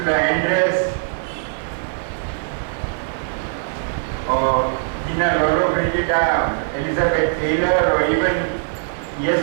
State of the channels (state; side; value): silent; left; 65 dB below the other